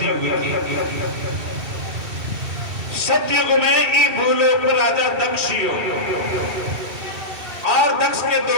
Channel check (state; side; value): late; left; 2.7 ms